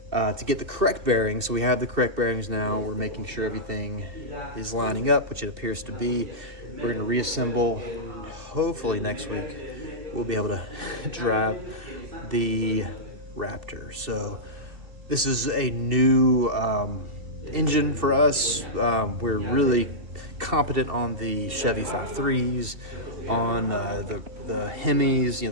to get the correct bearings. So we have the correct bearings now. We're making sure everything is lining up, which it appears to be. We're going to reassemble. Hopefully next week we'll be able to drive the Raptor. So this is a new engine for us. We're really competent on the Chevy 5.3s, on the Hemis, you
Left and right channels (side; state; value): left; late; 2.7 ms